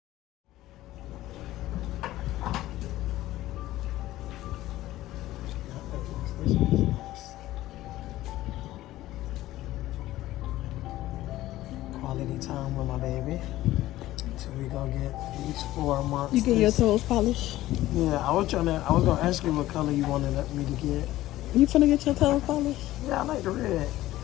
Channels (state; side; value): quieter; right; 15.6 dB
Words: Quality time with my baby. So we gonna get each 4 months. You get your toes polished? Yeah, I was gonna ask you what color you wanted me to get. You finna get your toes polished? Yeah, I like the red.